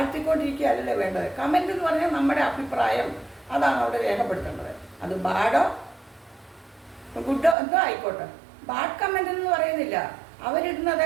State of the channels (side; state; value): left; drops out; at 7.6 s